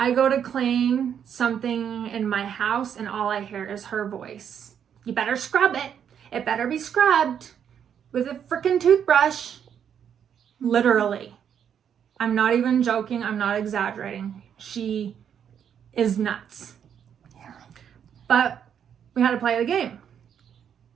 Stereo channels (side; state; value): left; quieter; 8.5 dB